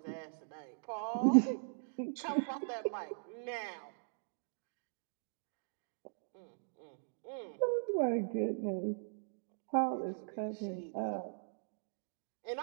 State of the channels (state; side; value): silent; left; digital silence